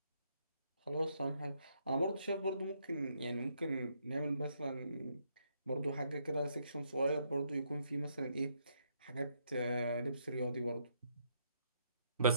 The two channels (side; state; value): both; inverted; correlation -0.74